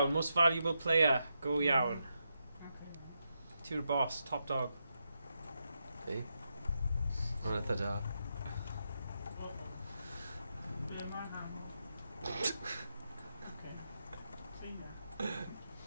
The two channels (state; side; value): inverted; both; correlation -0.84